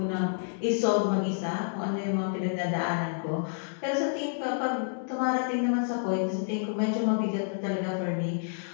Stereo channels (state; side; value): silent; right; digital silence